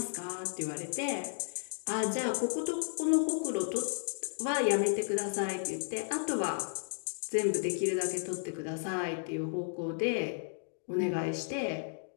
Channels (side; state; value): right; silent; digital silence